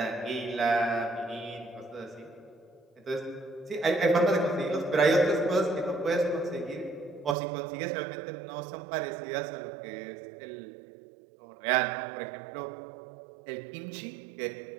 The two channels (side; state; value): left; drops out; at 7.4 s